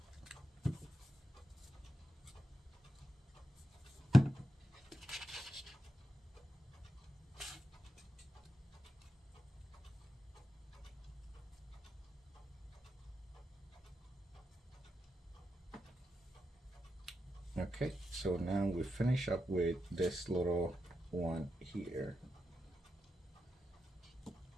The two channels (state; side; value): normal; both; correlation 0.88